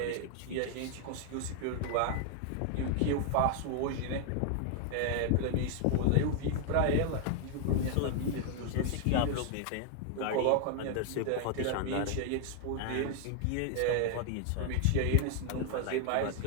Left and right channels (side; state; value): both; different; correlation 0.00